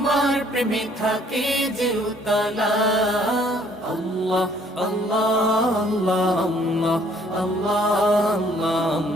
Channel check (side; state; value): both; normal; correlation 0.61